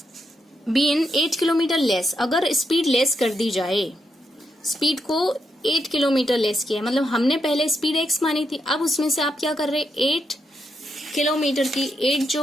been 8 kilometre less, अगर स्पीड लेस कर दी जाए, स्पीड को 8 किलोमीटर लेस किया है, मतलब हमने पहले स्पीड x मानी थी, अब उसमें से आप क्या कर रहे हैं 8 किलोमीटर की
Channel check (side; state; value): both; normal; correlation 0.82